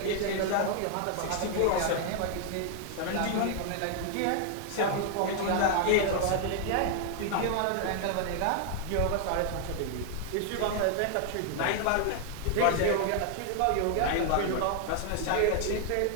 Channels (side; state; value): both; different; correlation 0.00